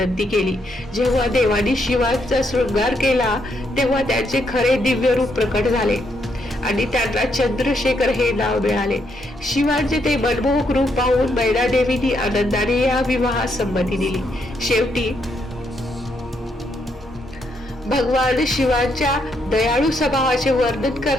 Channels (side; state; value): both; normal; correlation 0.76